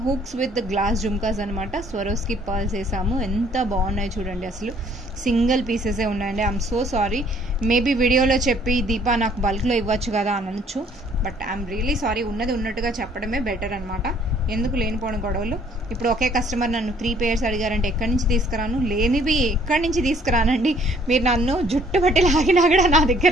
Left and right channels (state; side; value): normal; both; correlation 0.60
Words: హుక్స్ విత్ గ్లాస్ జుమ్కాస్ అనమాట. స్వరోస్కి పర్ల్స్ వేసాము. ఎంత బాగున్నాయి చూడండి అసలు. సింగిల్ పీసెసే ఉన్నాయండి. ఐఎమ్ సో సారీ, మేబీ వీడియోలో చెప్పి దీపా నాకు బల్క్లో ఇవ్వచ్చు కదా అని అనొచ్చు. బట్ ఐఎమ్ రియలీ సారీ, ఉన్నది ఉన్నట్టుగా చెప్పడమే బెటర్ అనమాట. ఎందుకు లేనిపోని గొడవలు. ఇప్పుడు ఒకే కస్టమర్ నన్ను 3 pairs అడిగారంటే ఎక్కడి నుంచి తీసుకురాను? లేనివి ఎక్కడి నుంచి తీసుకురానండి. మీరు నన్ను జుట్టు పట్టి లాగినా కూడా నా